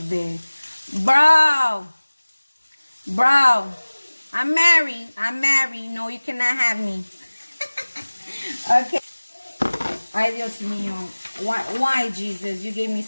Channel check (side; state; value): both; inverted; correlation -1.00